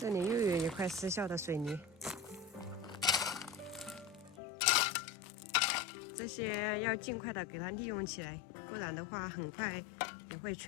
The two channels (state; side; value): drops out; right; at 4.4 s